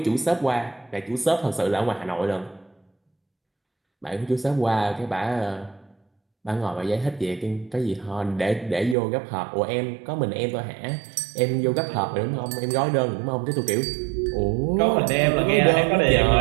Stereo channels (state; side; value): drops out; left; at 9.0 s